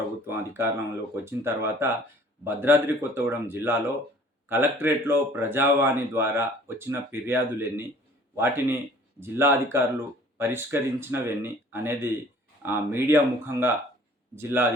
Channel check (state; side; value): normal; both; correlation 0.52